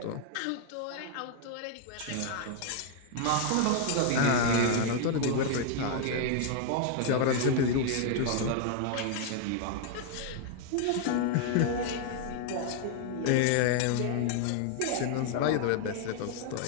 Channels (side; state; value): both; different; correlation 0.00